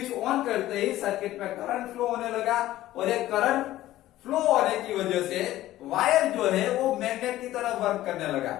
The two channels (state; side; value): quieter; right; 14.9 dB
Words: ऑन करते ही सर्किट में करंट फ्लो होने लगा और ये करंट फ्लो होने की वजह से वायर जो है वो मैग्नेट की तरह वर्क करने लगा।